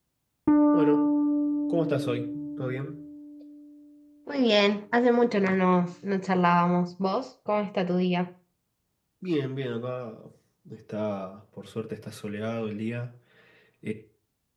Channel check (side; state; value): both; identical; correlation 1.00